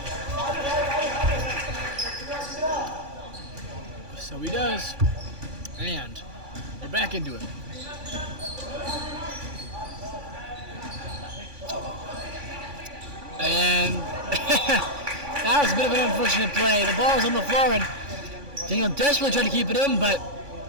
Boys. And we're back into it. And that was a bit of an unfortunate play. The ball was on the floor, and Daniel desperately tried to keep it in, but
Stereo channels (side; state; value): left; late; 2.3 ms